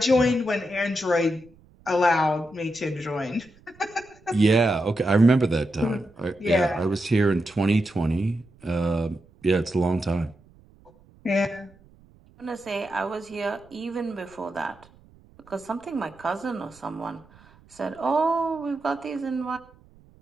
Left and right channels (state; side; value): noise; right; rumble, 27 dB below the sound